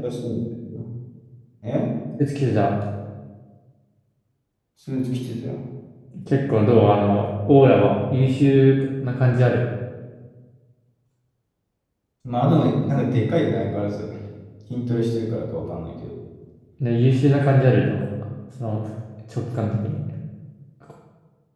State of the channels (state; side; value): identical; both; correlation 1.00